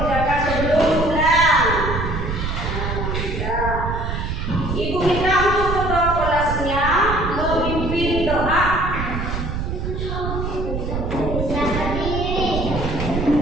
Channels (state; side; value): noise; right; rumble, 3 dB below the sound